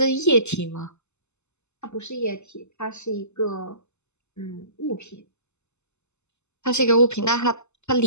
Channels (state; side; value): late; right; 0.82 ms